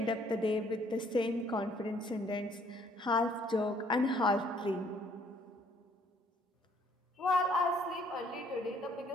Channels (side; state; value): both; normal; correlation 0.63